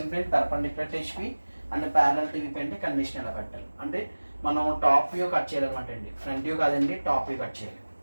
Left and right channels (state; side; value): inverted; both; correlation -1.00